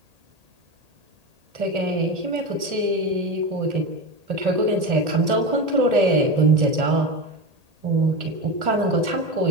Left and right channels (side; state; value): left; late; 1.8 ms